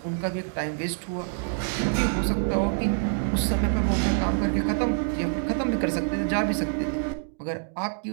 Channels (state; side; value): silent; left; digital silence